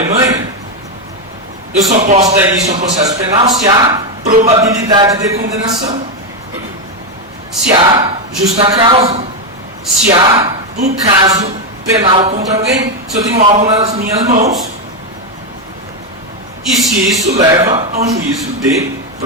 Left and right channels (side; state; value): both; normal; correlation 0.06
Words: eu só posso dar início a um processo penal se há probabilidade de condenação, se há justa causa, se há um caso penal contra alguém, se eu tenho algo nas minhas mãos e se isso leva a um juízo de